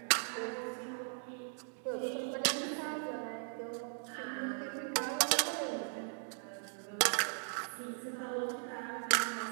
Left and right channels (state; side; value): silent; left; digital silence